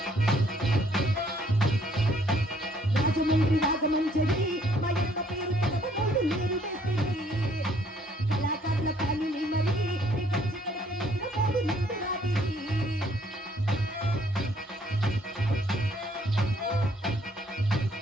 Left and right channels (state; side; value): normal; both; correlation 0.64